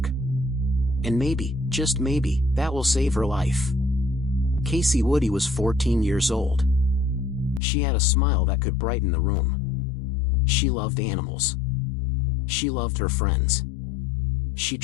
And maybe, just maybe, that will save her life. Kacie Woody was 14 years old. She had a smile that could brighten the room. She loved animals. She loved her friends. She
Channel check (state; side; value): drops out; right; at 7.6 s